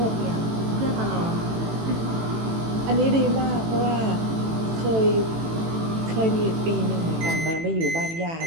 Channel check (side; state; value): left; late; 18 ms